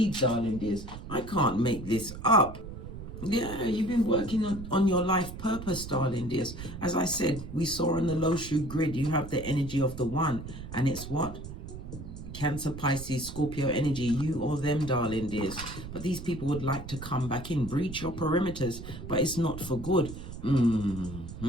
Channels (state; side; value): noise; right; rumble, 10 dB below the sound